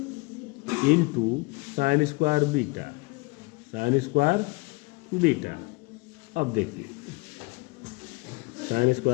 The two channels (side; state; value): right; quieter; 25.6 dB